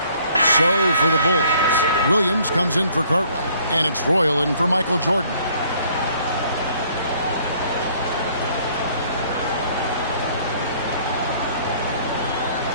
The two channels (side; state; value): both; inverted; correlation -0.60